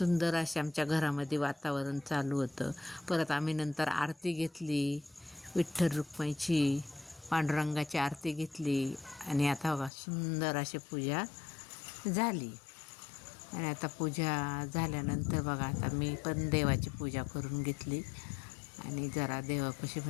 असे आमच्या घरामध्ये वातावरण चालू होतं. परत आम्ही नंतर आरती घेतली, विठ्ठल रुक्माईची पांडुरंगाची आरती घेतली. आणि आता बघा सुंदर अशी पूजा झाली. आणि आता पूजा झाल्यानंतर बघा आता मी पण देवाची पूजा करून घेतली. आणि जरा देवापाशी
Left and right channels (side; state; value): right; drops out; at 9.9 s